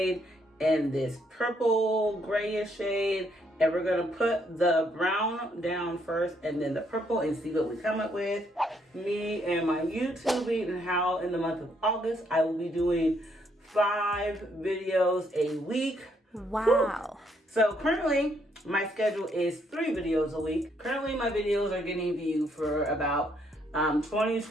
and this purple grayish shade, and we're gonna put the brown down first and then the purple and see what we come up with. Me and my YouTubing and how in the month of August I will be doing 5 videos a week. Wow. Woo. So currently my schedule is 3 videos a week. Currently my videos are getting viewed for about 20,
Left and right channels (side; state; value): both; normal; correlation 0.72